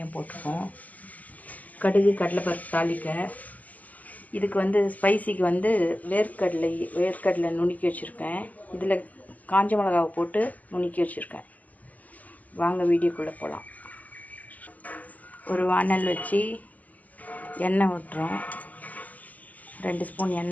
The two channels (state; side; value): late; right; 0.078 ms